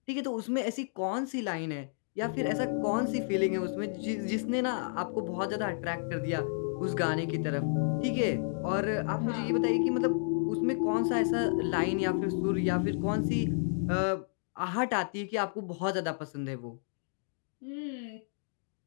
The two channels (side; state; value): right; silent; digital silence